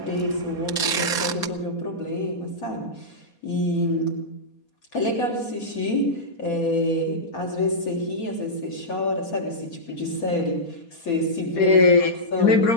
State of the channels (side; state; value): right; late; 4.2 ms